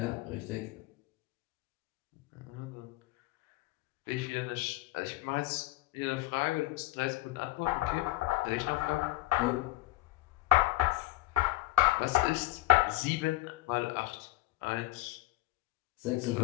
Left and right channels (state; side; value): quieter; right; 19.3 dB